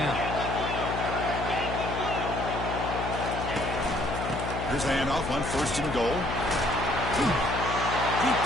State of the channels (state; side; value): noise; left; hum, 5 dB below the sound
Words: Here's the handoff on 1st and goal. He